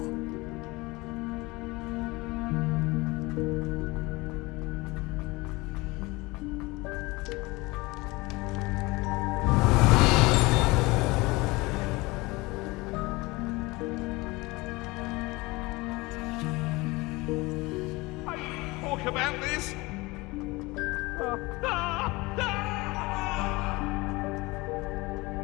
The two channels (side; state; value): right; quieter; 22.9 dB